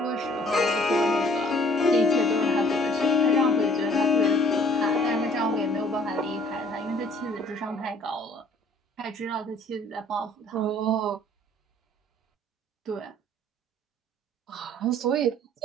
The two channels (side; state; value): both; normal; correlation 0.56